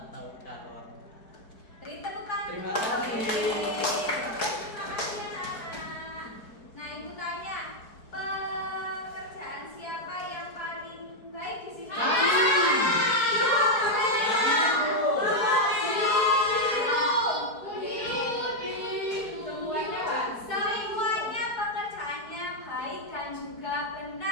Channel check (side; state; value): right; late; 4.6 ms